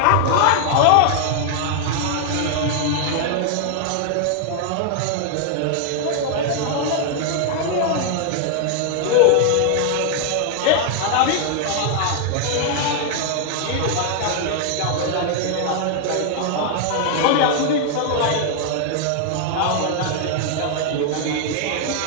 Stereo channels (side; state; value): both; different; correlation 0.00